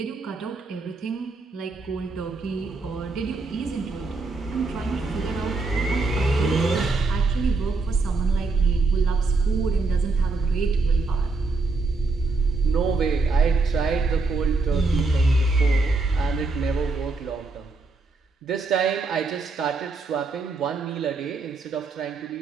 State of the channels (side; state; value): left; quieter; 3.8 dB